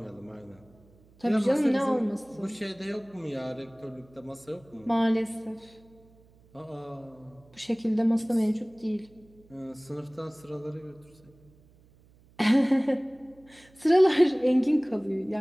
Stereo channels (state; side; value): noise; right; hum, 28 dB below the sound